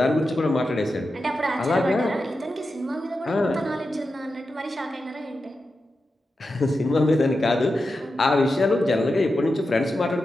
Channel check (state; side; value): normal; both; correlation 0.90